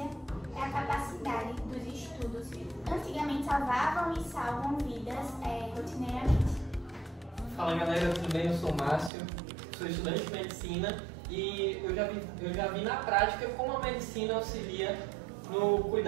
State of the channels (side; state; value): left; drops out; at 9.1 s